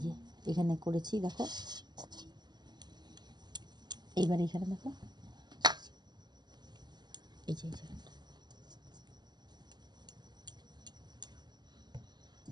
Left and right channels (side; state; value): left; late; 0.21 ms